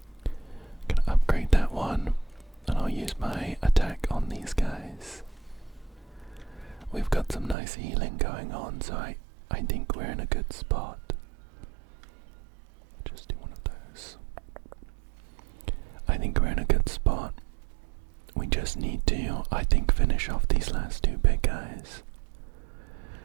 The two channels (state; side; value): drops out; left; at 7.6 s